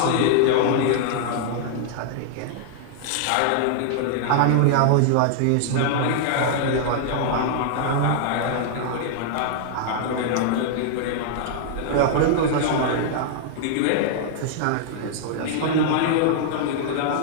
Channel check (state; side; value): different; both; correlation -0.01